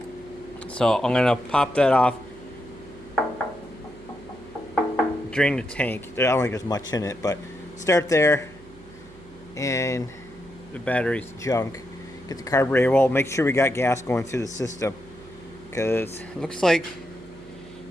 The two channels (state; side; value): noise; right; hum, 21 dB below the sound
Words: So I'm going to pop that off, drain the tank. I don't think there's much in it, but start there. And the battery's junk. Get the carburetor. Well, make sure we got gas going through the system, because it looks like